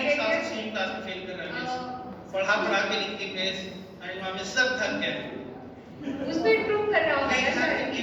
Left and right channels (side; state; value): both; identical; correlation 1.00